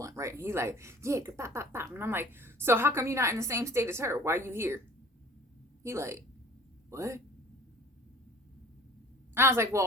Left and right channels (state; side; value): normal; both; correlation 0.47